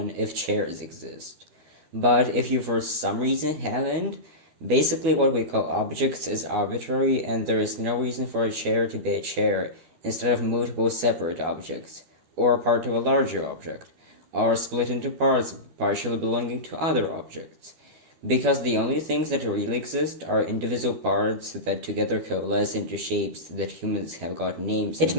if chairs exist. But if you for some reason haven't, basically what we call objects is arbitrary, and there is no reason for a chair to be a chair instead of multiple separate objects, or part of a larger object, or split into parts partially belonging to other objects, because the only things that really exist are indivisible parts that together coalesce into shapes that humans have got names. It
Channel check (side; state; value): left; late; 12 ms